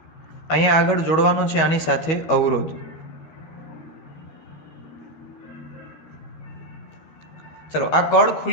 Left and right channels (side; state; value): right; late; 12 ms